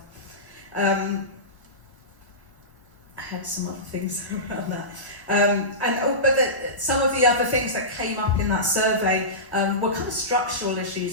I had some other things around that. Some of the other things that came up in that survey were kind of structural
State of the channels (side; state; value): both; normal; correlation -0.20